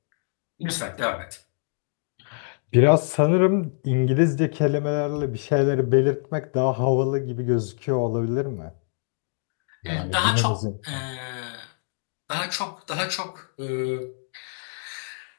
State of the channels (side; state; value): right; silent; digital silence